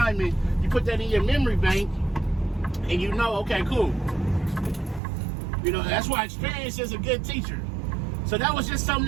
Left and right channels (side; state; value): left; drops out; at 5.0 s